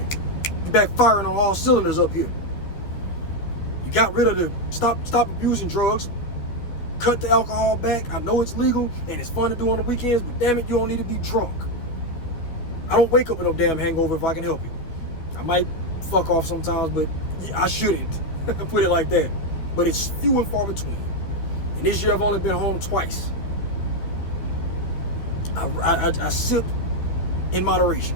You're back firing on all cylinders up here. You got rid of the stop abusing drugs. Cut the alcohol back. I know it's legal and it's fun to do on the weekends, but damn it, you don't need to be drunk. I don't wake up with no damn hangover if I can help it. I might fuck off sometimes, but I shouldn't. Put it like that. But it's few and far between. And this year I've only been home twice. I sip in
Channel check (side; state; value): right; late; 12 ms